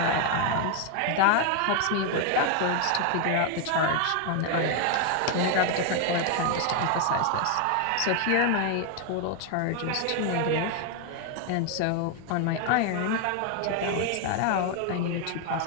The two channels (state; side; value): different; both; correlation 0.01